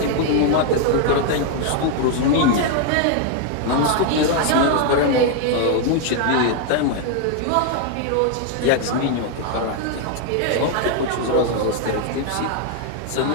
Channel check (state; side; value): different; both; correlation 0.00